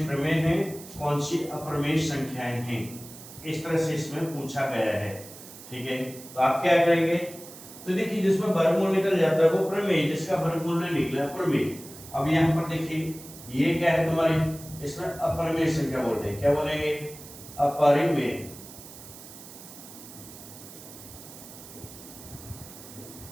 प्रमेय हैं, कौन सी अप्रमेय संख्याएं हैं, इस तरह से इसमें पूछा गया है। ठीक है, तो आप क्या करेंगे, तो देखिए जिसमें वर्गमूल निकल जाता है वो प्रमेय, जिसका वर्गमूल नहीं निकला प्रमेय। अब यहाँ पर देखिए ये क्या है तुम्हारी, इसमें अप्रमेय संख्या बोल रहे हैं। क्या बोलेंगे, अपरिमेय।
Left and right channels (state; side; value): noise; right; hiss, 16 dB below the sound